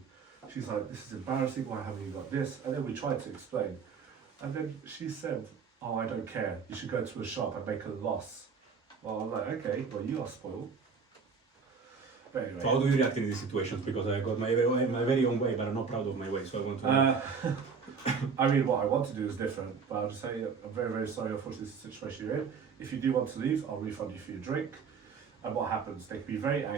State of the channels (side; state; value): left; quieter; 5.6 dB